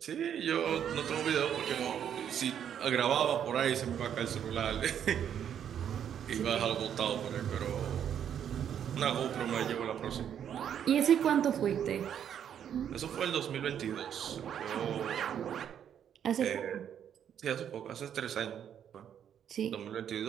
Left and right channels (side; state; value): left; quieter; 9.1 dB